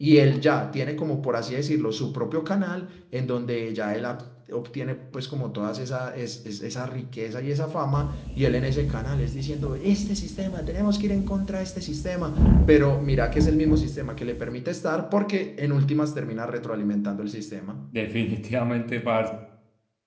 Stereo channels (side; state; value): both; identical; correlation 1.00